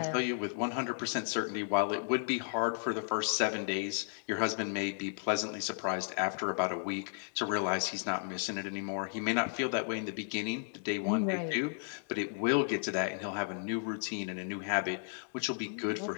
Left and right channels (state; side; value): silent; right; digital silence